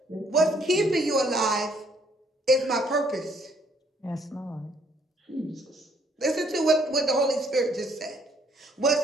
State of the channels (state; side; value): normal; both; correlation 0.65